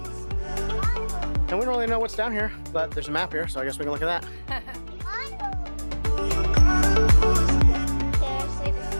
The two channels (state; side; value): inverted; both; correlation -1.00